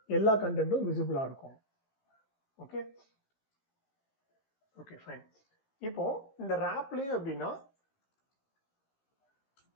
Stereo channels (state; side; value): late; right; 15 ms